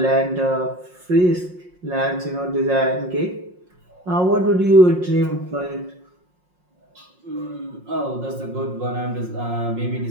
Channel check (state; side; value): late; left; 5.6 ms